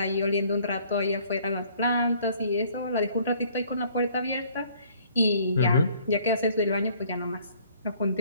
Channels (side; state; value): both; inverted; correlation -0.59